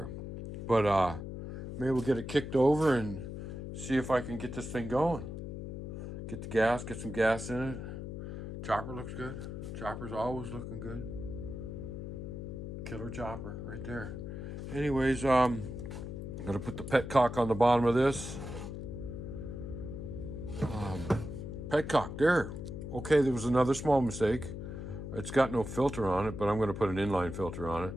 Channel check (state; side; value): noise; left; hum, 7 dB below the sound